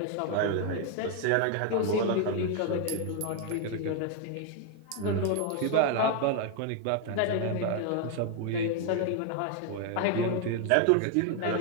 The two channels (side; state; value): both; different; correlation 0.00